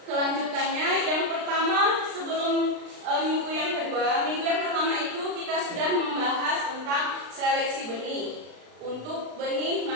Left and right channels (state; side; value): late; left; 36 ms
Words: kelanjutannya. Yang pertama, sebelum minggu yang kedua, minggu yang pertama itu kita sudah membahas tentang seleksi benih. Untuk benih,